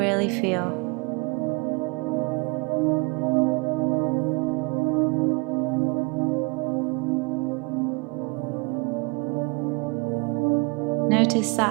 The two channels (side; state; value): left; quieter; 29.2 dB